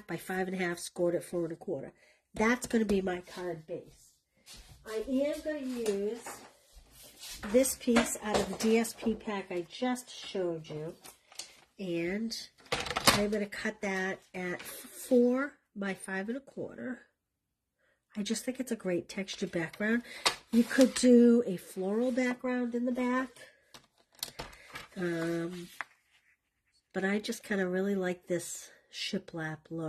by 5.5, scored at 4 1/4. That's going to be my card base. I am going to use this piece out of the DSP pack I just showed you. And I'm going to cut that at 4 by 5 1/4. I just think it's a great textured background. You could do a floral background in the back. But I just kind of really like this shiplap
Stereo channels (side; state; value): both; identical; correlation 1.00